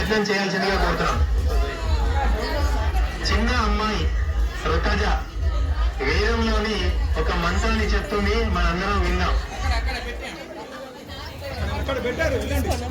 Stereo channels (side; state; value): both; identical; correlation 1.00